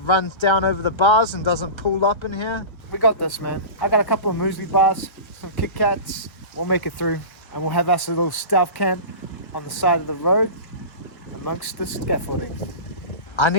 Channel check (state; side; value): late; right; 1.3 ms